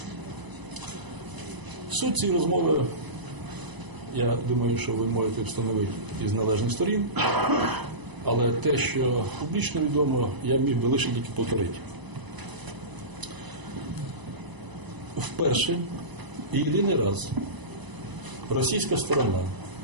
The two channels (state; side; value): late; left; 1.0 ms